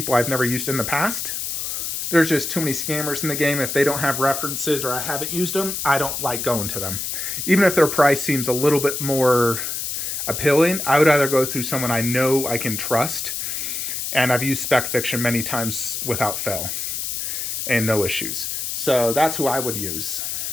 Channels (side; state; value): left; noise; hiss, 3 dB below the sound